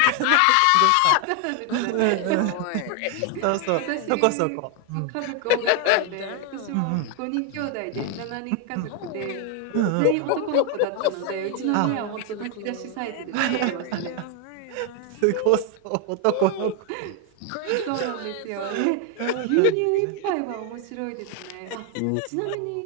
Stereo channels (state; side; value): different; both; correlation 0.01